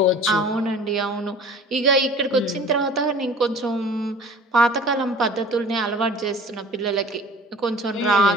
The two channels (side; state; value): both; normal; correlation 0.44